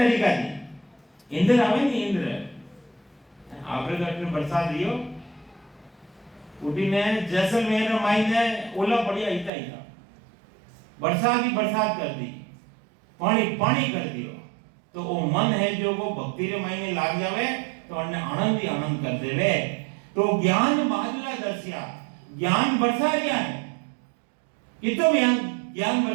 थी इंद्र आवे नहीं, इंद्र आपरे घर में बरसात दियो उठी ने जैसलमेर मायने ओला पड़िया इता इता बरसात ही बरसात कर दी, पानी पानी कर दियो। तो वो मन है जो वो भक्ति रे मायने लाग जावे तो अन्ने आनंद ही आनंद कर देवे। तो ज्ञान बादला दर्शिया, ज्ञान बरसा रिया है, कितो ज्ञान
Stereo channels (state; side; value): drops out; left; at 9.5 s